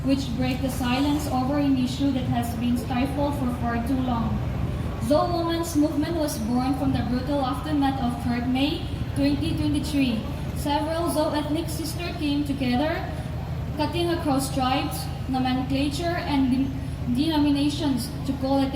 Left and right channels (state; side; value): identical; both; correlation 1.00